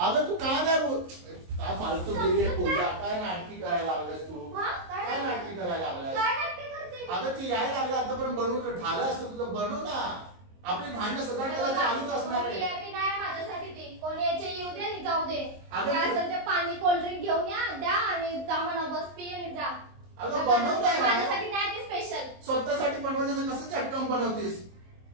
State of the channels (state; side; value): late; left; 23 ms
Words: अगं तू का नाही बोल? काय फालतू केली आहे पूजा? काय नाटकी करायला लागलास तू? हा? काय नाटकी करायला लागलास? काय नाटकी करते मी? अगं ती यायला लागला आतापर्यंत बनवून झालं असतं तुझं. बनव ना. आपली भांडणं सगळं त्याला चालूच असणार आहे. VIP नाही माझ्यासाठी ती. कोण यायचे येऊ दे आणि जाऊ दे. अगं काय तू- असेल ते पाणी कोल्ड्रिंक घेऊन या, द्या आणि जा म्हणा, बस पी आणि जा. अगं बनव काय ना? माझ्यासाठी नाही ती स्पेशल. स्वतःसाठी बनवायचं तर कसं चटकन बनवतीस?